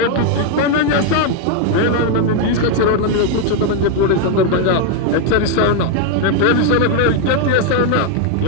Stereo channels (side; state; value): both; different; correlation 0.01